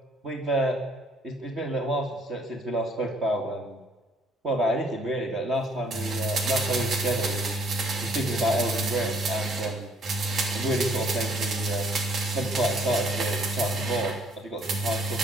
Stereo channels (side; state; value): both; normal; correlation 0.63